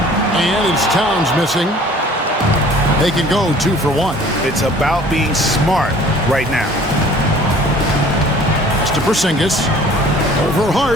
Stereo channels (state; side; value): normal; both; correlation 0.51